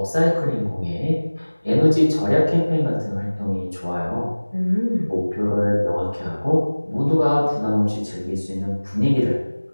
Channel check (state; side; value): inverted; both; correlation -1.00